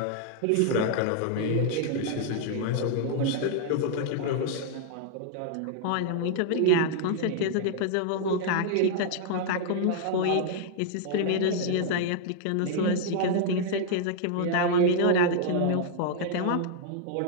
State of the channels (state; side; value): different; both; correlation 0.00